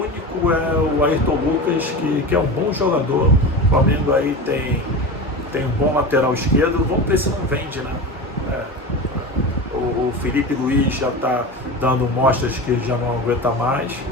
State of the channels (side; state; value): both; normal; correlation 0.27